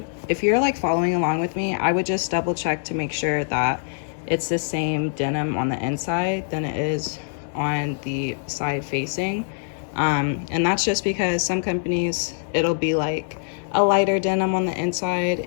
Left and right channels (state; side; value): silent; right; 63 dB below the other